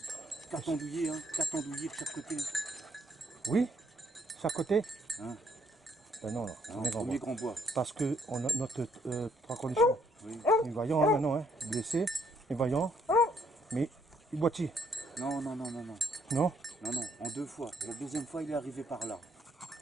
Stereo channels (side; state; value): both; normal; correlation 0.69